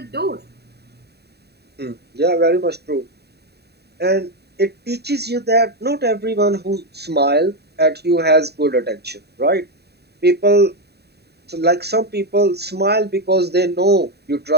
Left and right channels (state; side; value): late; left; 0.48 ms